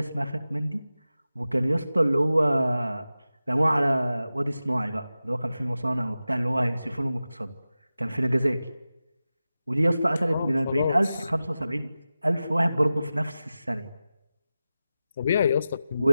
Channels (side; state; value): both; inverted; correlation -0.94